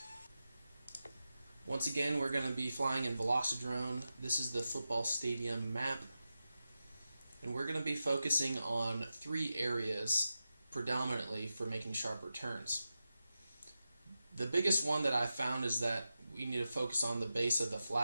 Once again, we're going to be flying in Velocidrone. This is the football stadium map, and we're going to be focusing on three areas predominantly for making sharper turns. The biggest one that I found is that we need to focus on the base of the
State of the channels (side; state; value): both; inverted; correlation -0.91